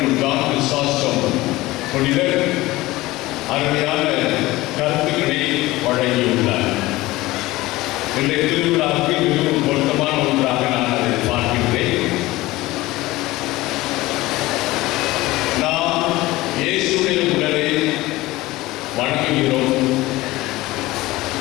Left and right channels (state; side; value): quieter; right; 18.9 dB